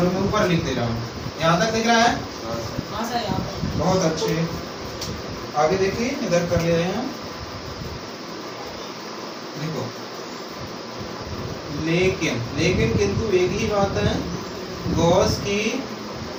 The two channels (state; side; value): identical; both; correlation 1.00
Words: मैं ऊपर लिख दे रहा हूँ। यहाँ तक दिख रहा है? हाँ सर, यहाँ पर। बहुत अच्छे। आगे देखिए, इधर कर ले रहे हैं। देखो लेकिन किंतु एक ही बात है, गॉस की,